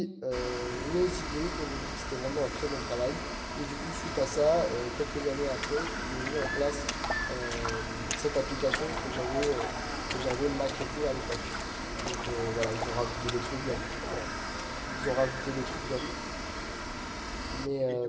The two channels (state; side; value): identical; both; correlation 1.00